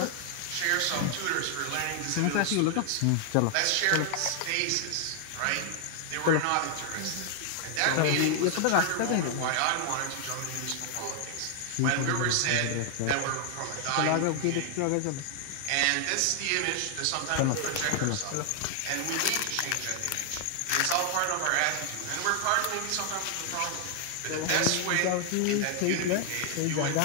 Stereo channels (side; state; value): both; different; correlation 0.00